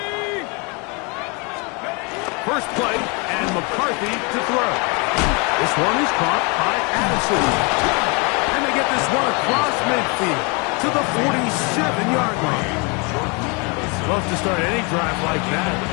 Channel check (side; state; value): right; quieter; 31.3 dB